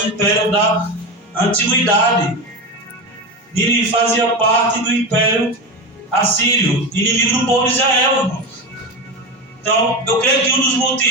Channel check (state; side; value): normal; both; correlation 0.20